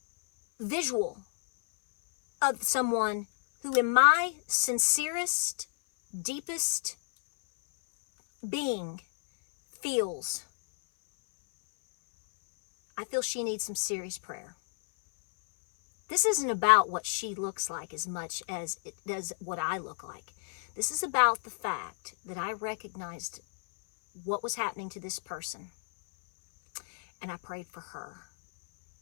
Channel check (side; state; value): right; silent; 57 dB below the other